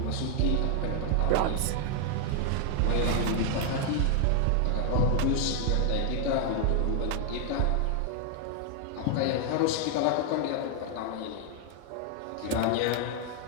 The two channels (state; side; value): different; both; correlation 0.00